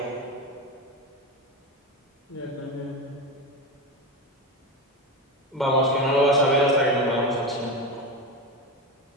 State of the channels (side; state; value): both; normal; correlation 0.19